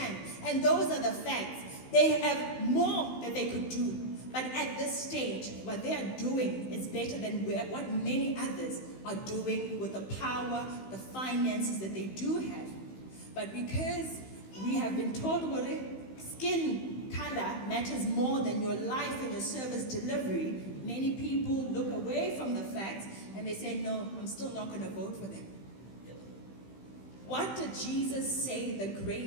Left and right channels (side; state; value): right; late; 15 ms